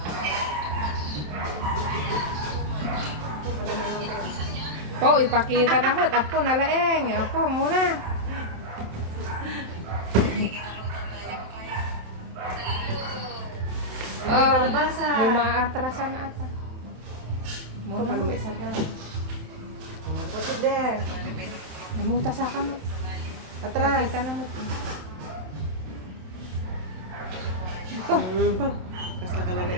Ko, ipakita na mo. Ako nalaeng. Ako muna. Oh, may maatrasan na ata. Muna mo. Go to there. Namuta sa kamot. Atras. Pakita na mo. Kas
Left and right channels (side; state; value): left; late; 27 ms